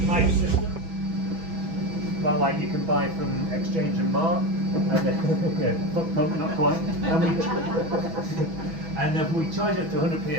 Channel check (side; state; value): left; late; 6.1 ms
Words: pipe system, well, like you can buy from Exchange and Mark, and yeah, pump, not quite. And then we charge it to